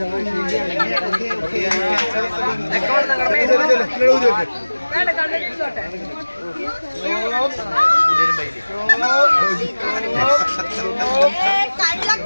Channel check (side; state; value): both; inverted; correlation -1.00